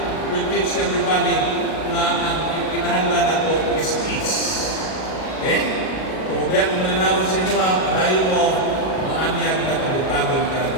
will teach everybody na ang kinahanglan nato is peace. Okay? Kung biyak mo na sa inyo, dahil mo, maanyag na kabutagon ka na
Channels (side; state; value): right; late; 38 ms